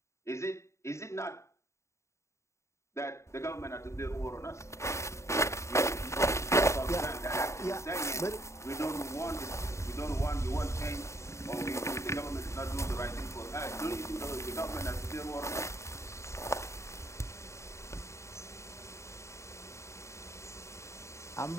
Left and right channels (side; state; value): right; late; 0.14 ms